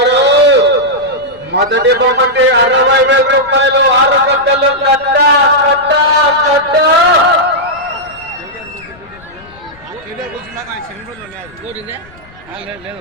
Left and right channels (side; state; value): left; noise; rumble, 25 dB below the sound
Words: మొదటి బొమ్మటి 60,000 రూపాయలు 6 గంటలు కట్ట.